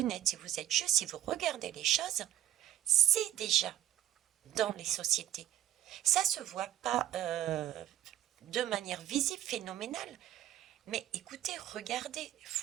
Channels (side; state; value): left; quieter; 12.2 dB